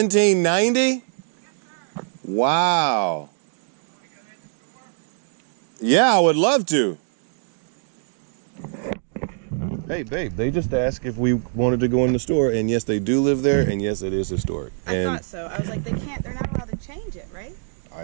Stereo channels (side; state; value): left; silent; digital silence